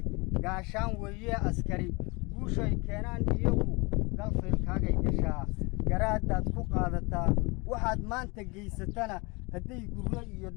gaashaan weeye askari guushay keenaan iyagu galfaylkaagay gashaa garaadaad ku qaadataa waxaad maanta geysatana hadday gurro iyo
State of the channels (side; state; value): right; quieter; 27.2 dB